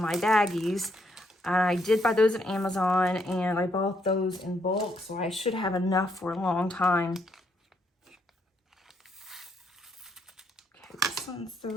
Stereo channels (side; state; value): both; normal; correlation 0.74